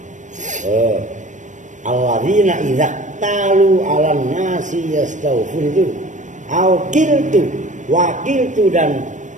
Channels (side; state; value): left; late; 0.36 ms